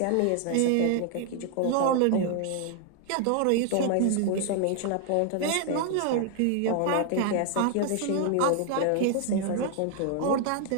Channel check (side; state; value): both; different; correlation 0.00